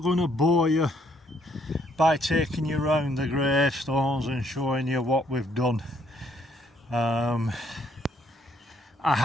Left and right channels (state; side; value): normal; both; correlation 0.69